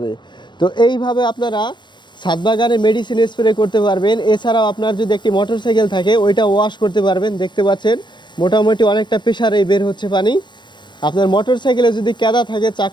তো এইভাবে আপনারা ছাদ বাগানে মেডিসিন স্প্রে করতে পারবেন। এছাড়াও আপনার যদি একটি মোটরসাইকেল থাকে ওইটা ওয়াশ করতে পারবেন। দেখতে পাচ্ছেন মোটামুটি অনেকটা প্রেশারেই বের হচ্ছে পানি। আপনার মোটরসাইকেলে যদি কেদা থাকে,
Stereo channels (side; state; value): right; late; 0.22 ms